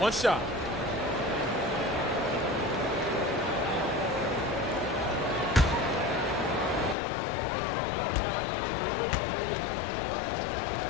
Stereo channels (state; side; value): drops out; right; at 7.0 s